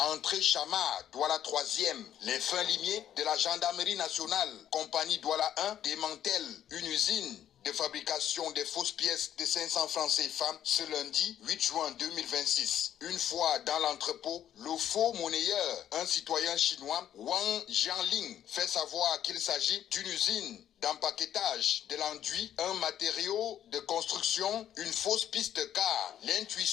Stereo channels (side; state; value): right; quieter; 10.6 dB